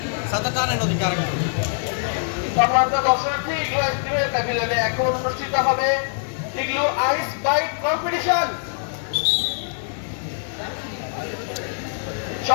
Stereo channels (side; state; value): right; silent; digital silence